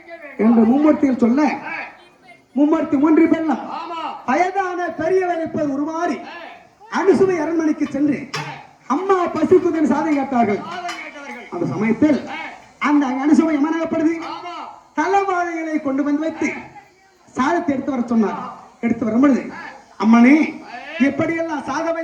என்று மும்மூர்த்திகள் சொல்ல, மும்மூர்த்தி 3 பேரும் வயதான பெரியவர் இருப்பது உருமாறி அனுசுவை அரண்மனைக்கு சென்று அம்மா பசிக்குதன் சாதை கேட்டார்கள். அந்த சமயத்தில் அந்த அனுசுவை எமனாகப்படுது. தலைவாழைகளை கொண்டு வந்து வைத்து சாதத்தை எடுத்து வர சொன்னார். எடுத்து வரும்பொழுது, அம்மனே எப்படியெல்லாம் சாத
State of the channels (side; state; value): both; identical; correlation 1.00